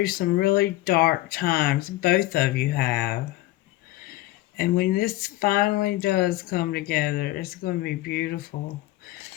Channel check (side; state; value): right; quieter; 17.2 dB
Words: some really dark times, both of you have. And when this finally does come together, it's going to be beautiful.